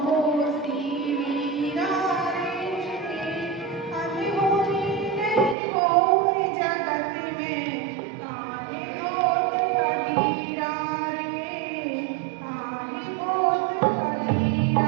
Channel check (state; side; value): drops out; left; at 5.6 s